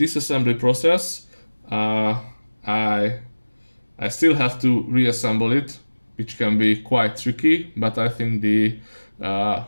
process. I still have to reassemble it, which can be quite tricky, but I think the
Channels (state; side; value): inverted; both; correlation -1.00